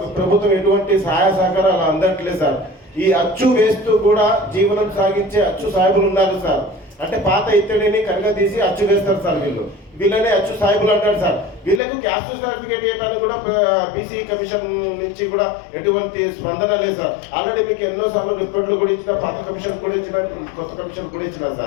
ప్రభుత్వం ఎటువంటి సహాయ సహకారాలు అందట్లేదు సార్. ఈ అచ్చు వేస్తూ కూడా జీవనం సాగించే అచ్చు సాహెబులు ఉన్నారు సార్. అంటే పాత ఇత్తడిని కనుక తీసి అచ్చు వేస్తారు సార్. వీళ్ళనే అచ్చు సాహెబులు అంటారు సార్. వీళ్ళకు క్యాస్ట్ సర్టిఫికేట్ ఇవ్వడానికి కూడా బీసీ కమిషన్ నుంచి కూడా ఎటువంటి స్పందన లేదు సార్. ఆల్రెడీ మీకు ఎన్నోసార్లు రిపోర్ట్లు కూడా ఇచ్చిన, పాత కమిషన్ కూడా ఇచ్చిన, కొత్త కమిషన్ కూడా ఇచ్చిన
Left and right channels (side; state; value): right; drops out; at 11.8 s